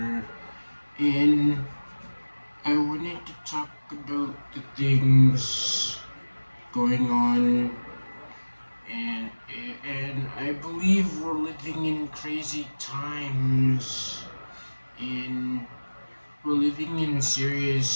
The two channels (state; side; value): inverted; both; correlation -1.00